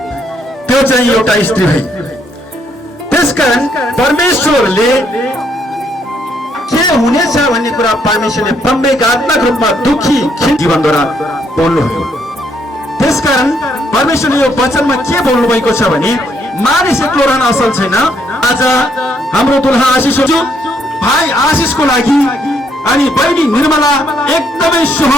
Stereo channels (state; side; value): normal; both; correlation 0.72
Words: त्यो चाहिँ एउटा स्त्री भई। त्यसकारण परमेश्वरले के हुनेछ भन्ने कुरा परमेश्वरले प्रवेगात्मक रूपमा दुखी जीवनद्वारा बोल्नुभयो। त्यसकारण परमेश्वरले यो वचनमा के बोल्नु भएको छ भने मानिस एक्लो रहन असल छैन। आज हाम्रो दुल्हा आशिष हो, भाइ आशिषको लागि अनि बहिनी निर्मला एकदमै